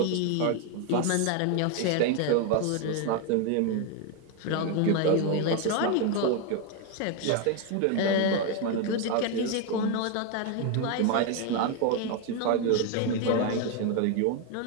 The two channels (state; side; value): different; both; correlation 0.01